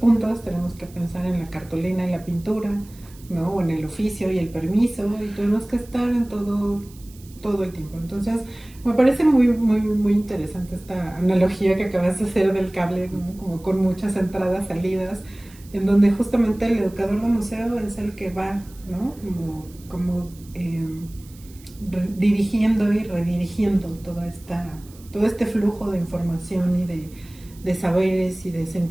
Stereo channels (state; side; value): noise; right; hiss, 24 dB below the sound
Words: tenemos que pensar en la cartulina y la pintura, ¿no? O en el oficio y el permiso, y tenemos que estar en todo el tiempo. Entonces, me parece muy, muy, muy interesante esta analogía que acabas de hacer del cable, ¿no? Como con muchas entradas, salidas, en donde justamente el educador de museo es el que va, ¿no? Como dirigiendo y redirigiendo todo este flujo de información y de saberes y de